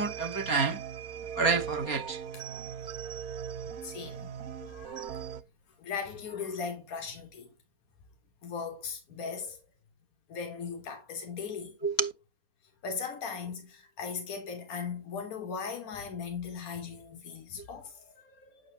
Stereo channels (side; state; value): right; late; 4.3 ms